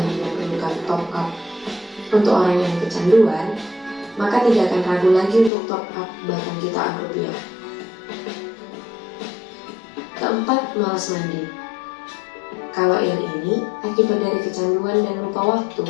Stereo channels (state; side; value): drops out; right; at 5.5 s